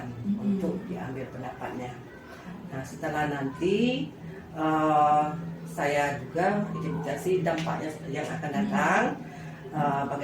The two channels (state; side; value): identical; both; correlation 1.00